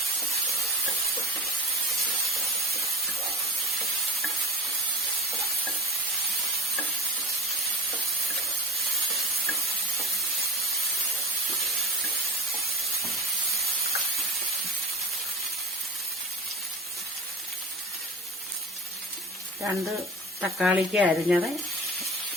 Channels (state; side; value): normal; both; correlation 0.33